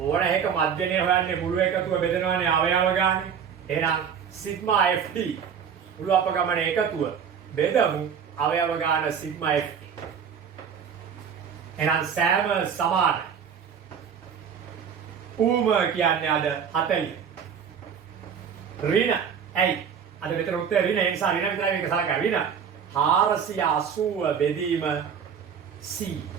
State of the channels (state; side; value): quieter; left; 7.4 dB